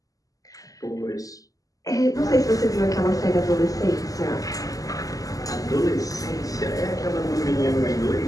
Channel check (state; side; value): late; right; 0.17 ms